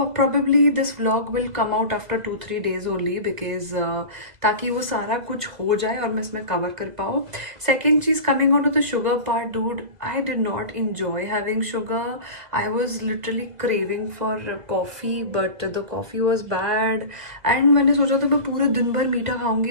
probably this vlog will come out after 2-3 days only because ताकि वो सारा कुछ हो जाए और मैं इसमें कवर कर पाऊँ. सेकेंड चीज़, coming on to the sugar part, dude, I did not enjoy having sugar. I was literally craving for coffee, but the coffee was bad. And मैंने सोचा था मैं पूरे दिन भर मीठा खाऊंगी,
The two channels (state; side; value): late; left; 2.0 ms